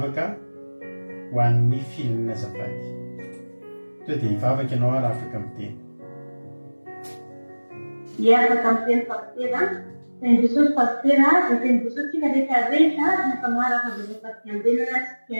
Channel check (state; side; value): inverted; both; correlation -1.00